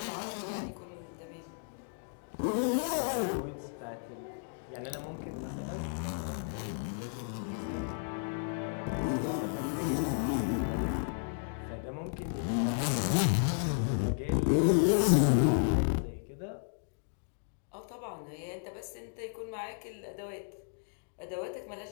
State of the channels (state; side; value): silent; right; digital silence